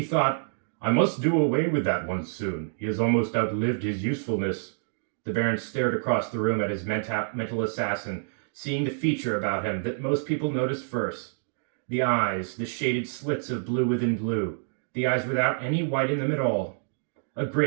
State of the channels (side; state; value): left; silent; digital silence